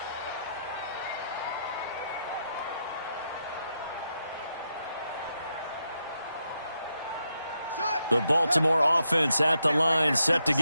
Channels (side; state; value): both; inverted; correlation -0.82